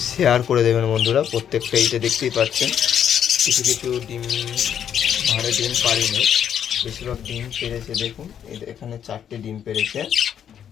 শেয়ার করে দেবেন বন্ধুরা। প্রত্যেকটা এইটা দেখতেই পাচ্ছেন, কিছু কিছু ডিম ভাড়ে ডিম পারিনি, বেশিরভাগ ডিম পেরেছে। দেখুন এখানে 4টে ডিম পেরেছে,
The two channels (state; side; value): quieter; right; 9.0 dB